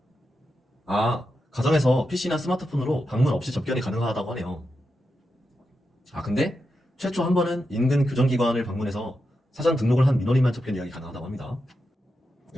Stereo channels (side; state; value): both; normal; correlation 0.88